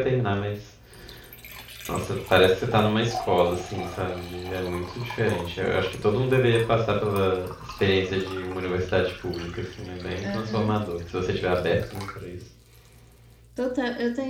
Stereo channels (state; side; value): identical; both; correlation 1.00